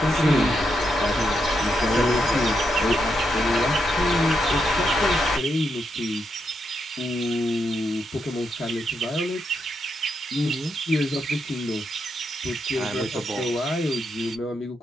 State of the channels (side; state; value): both; normal; correlation 0.81